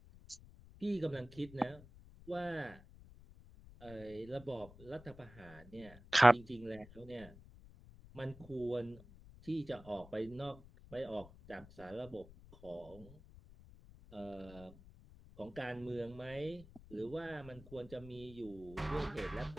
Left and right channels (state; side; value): noise; left; rumble, 19 dB below the sound